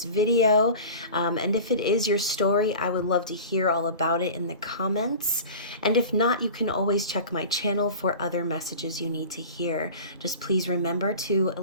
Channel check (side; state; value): both; inverted; correlation -0.37